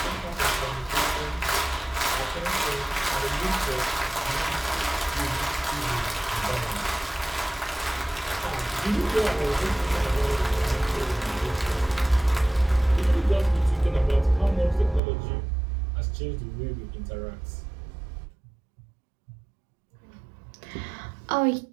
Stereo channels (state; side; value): drops out; left; at 15.0 s